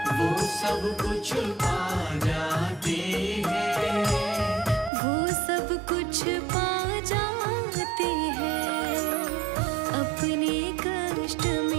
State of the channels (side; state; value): left; drops out; at 4.9 s